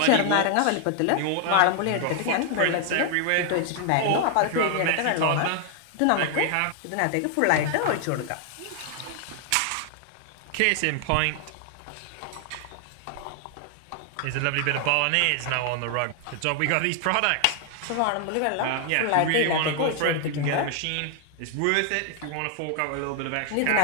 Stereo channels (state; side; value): different; both; correlation 0.00